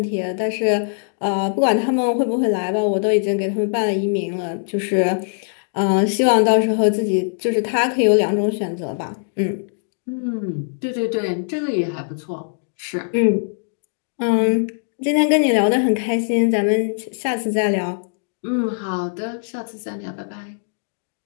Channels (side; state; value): right; silent; digital silence